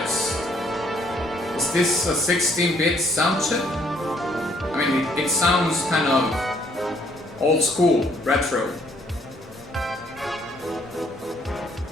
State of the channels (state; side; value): normal; both; correlation 0.65